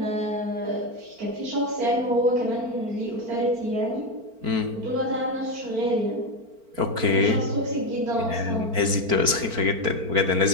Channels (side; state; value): left; late; 4.4 ms